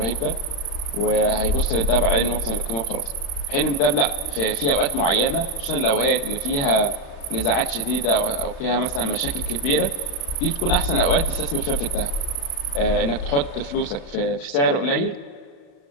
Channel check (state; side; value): late; right; 35 ms